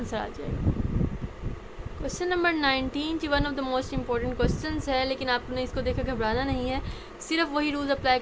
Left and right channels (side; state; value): both; identical; correlation 1.00